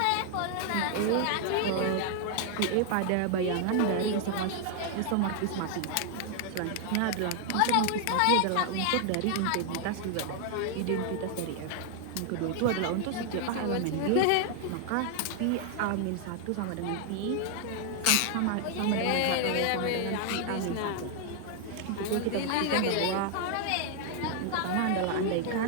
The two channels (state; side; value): different; both; correlation 0.00